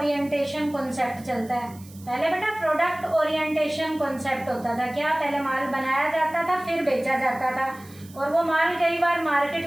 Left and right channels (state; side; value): noise; right; hiss, 23 dB below the sound